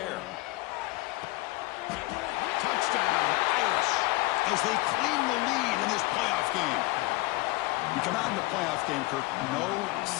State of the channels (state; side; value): quieter; right; 21.4 dB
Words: Touchdown, Irish, as they claim the lead in this playoff game. You come out in the playoff game, Kirk, no